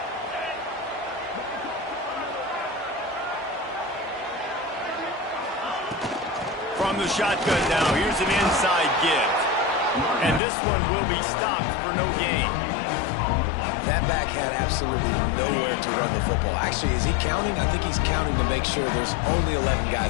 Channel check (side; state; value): right; drops out; at 10.4 s